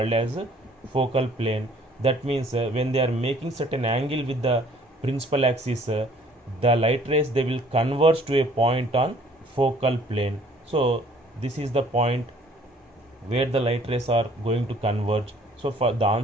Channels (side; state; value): both; normal; correlation 0.57